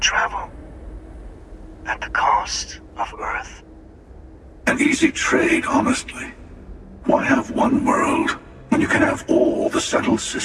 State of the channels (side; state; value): both; identical; correlation 1.00